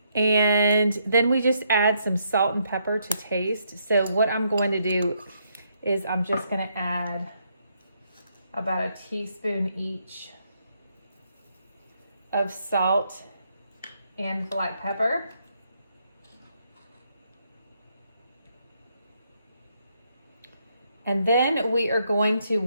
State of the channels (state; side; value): inverted; both; correlation -0.75